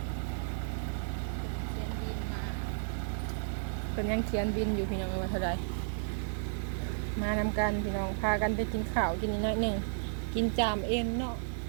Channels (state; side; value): silent; left; digital silence